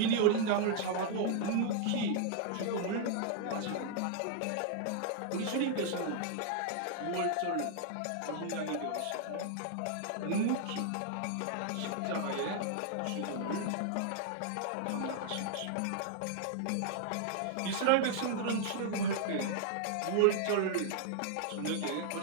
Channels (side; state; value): both; different; correlation -0.01